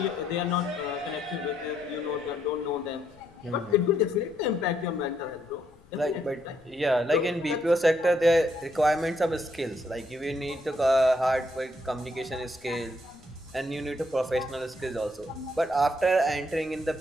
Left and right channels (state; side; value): noise; left; rumble, 26 dB below the sound